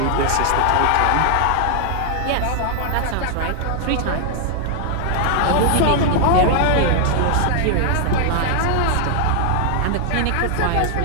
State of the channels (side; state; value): both; different; correlation 0.00